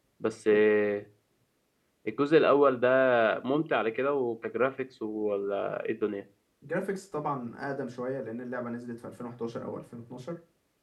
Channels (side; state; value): both; identical; correlation 1.00